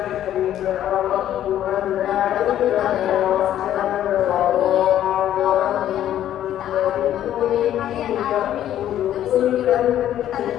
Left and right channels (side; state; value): right; quieter; 11.6 dB